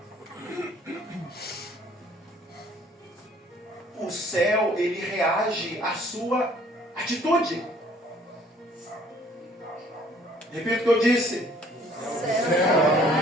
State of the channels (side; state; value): both; normal; correlation 0.58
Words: O céu, ele reage à sua atitude. Repita o que eu disse. O céu